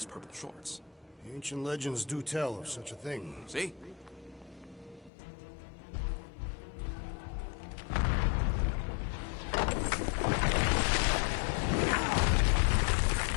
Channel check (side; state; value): right; drops out; at 5.1 s